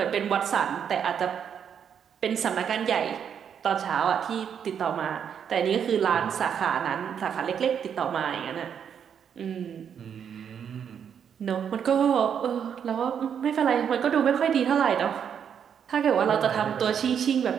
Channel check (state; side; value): quieter; left; 8.0 dB